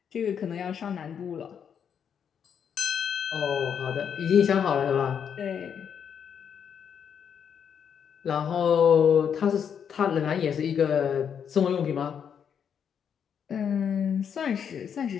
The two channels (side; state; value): right; quieter; 7.8 dB